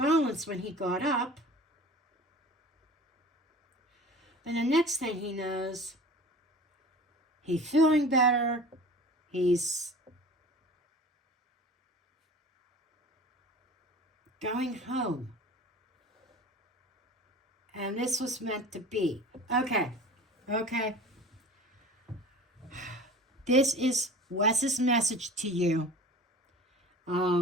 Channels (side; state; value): both; normal; correlation 0.40